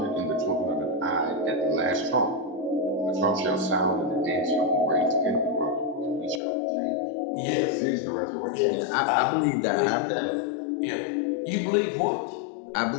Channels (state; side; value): drops out; right; at 6.4 s